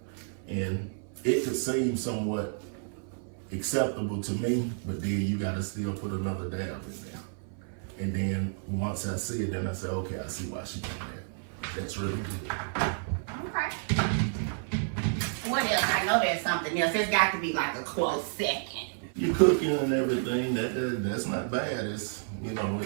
And it could seem somewhat acceptable to me, but then you gotta still put another dab in there. And then once I see it, then I say, okay, I see why she did that. That's really good. Okay. What else? I know there's something else. There's got to be like a close second. You're cooking and everything. That's not bad. It's, you know,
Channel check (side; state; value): left; silent; 57 dB below the other